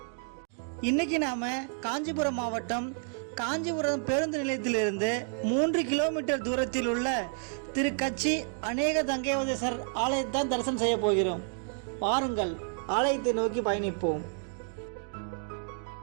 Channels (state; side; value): silent; left; 58 dB below the other